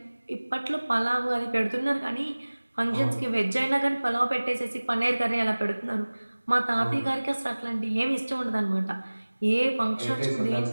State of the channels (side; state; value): both; inverted; correlation -1.00